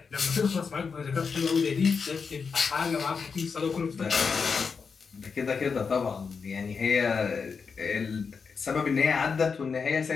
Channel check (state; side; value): quieter; right; 5.5 dB